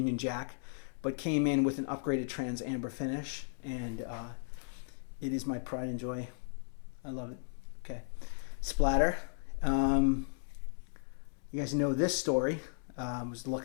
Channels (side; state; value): right; silent; 54 dB below the other